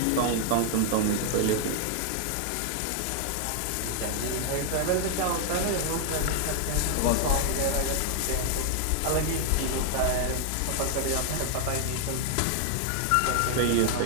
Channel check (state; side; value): different; both; correlation 0.00